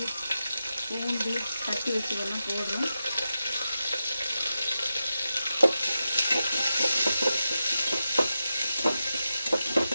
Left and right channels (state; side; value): inverted; both; correlation -0.90